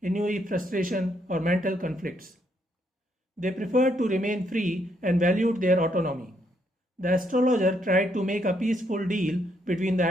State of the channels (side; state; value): both; normal; correlation 0.74